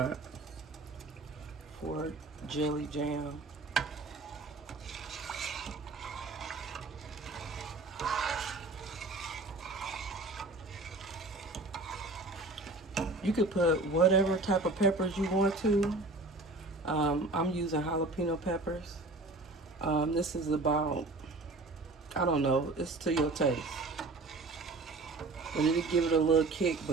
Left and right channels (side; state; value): left; quieter; 3.1 dB